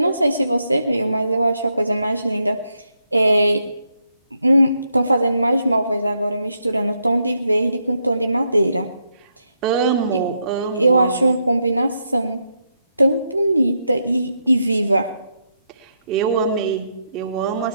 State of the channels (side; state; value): both; inverted; correlation -0.80